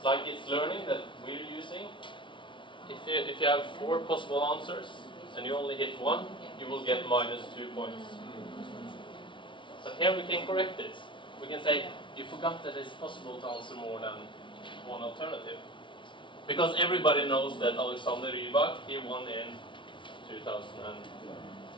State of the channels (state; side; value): late; right; 0.24 ms